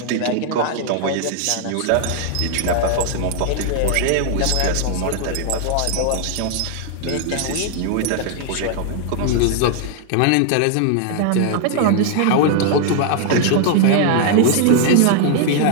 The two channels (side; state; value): both; different; correlation 0.00